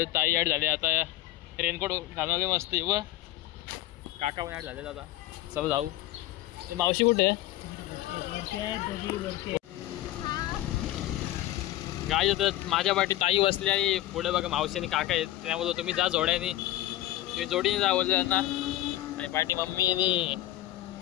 ताई ॲड झाले. आता रेनकोट घालून मस्त व काका पण ॲड झाले. दादा चला जाऊ. मावशी कुठे आहे? गाय जातात. माझ्या पाठी ताई बसली आणि पुढे बघा मावशी आणि काका आहेत. त्यामुळे तुम्ही जा जोड्याने, तुम्ही जोडीने जा बोलले त्यांना. आणि पाठी मम्मी आणि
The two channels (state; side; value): quieter; right; 15.6 dB